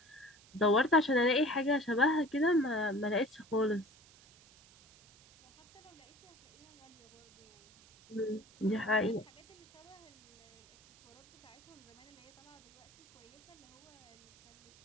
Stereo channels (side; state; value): right; noise; hiss, 26 dB below the sound